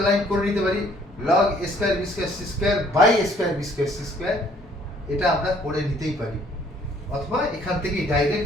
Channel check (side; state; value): both; normal; correlation 0.60